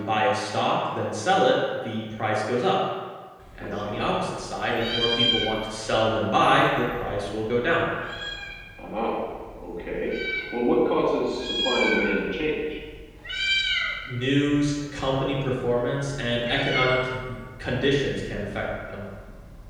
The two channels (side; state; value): both; identical; correlation 1.00